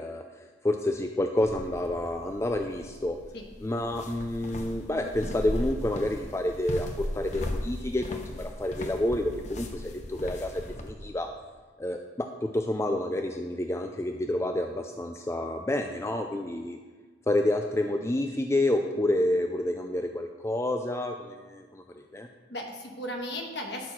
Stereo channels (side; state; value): both; normal; correlation 0.81